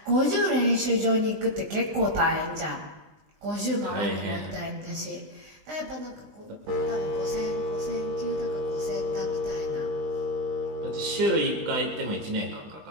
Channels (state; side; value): late; left; 19 ms